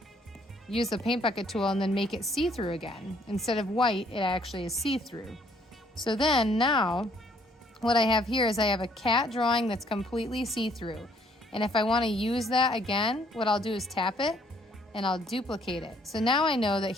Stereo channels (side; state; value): both; normal; correlation 0.64